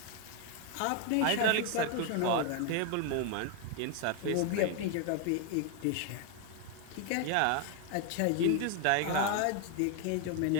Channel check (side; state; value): both; different; correlation 0.01